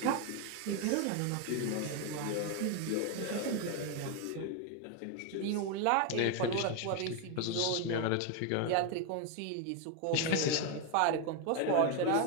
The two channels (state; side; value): different; both; correlation 0.01